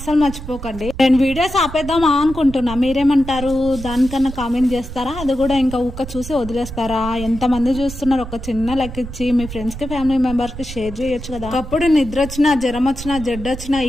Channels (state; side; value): noise; right; rumble, 11 dB below the sound